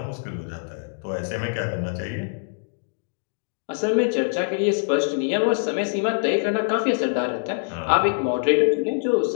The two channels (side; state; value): right; silent; digital silence